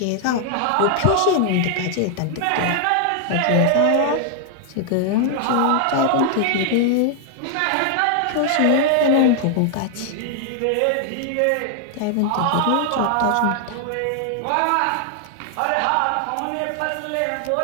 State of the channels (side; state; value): both; different; correlation 0.00